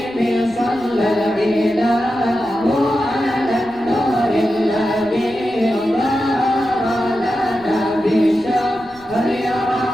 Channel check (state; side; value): noise; left; rumble, 25 dB below the sound